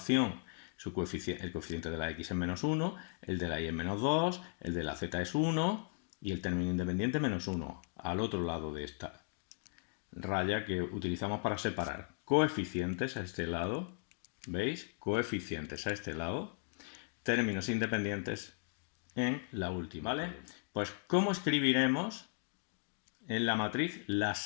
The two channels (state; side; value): silent; right; 53 dB below the other